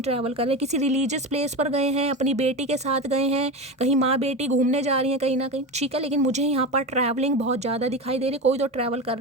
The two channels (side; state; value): both; normal; correlation 0.23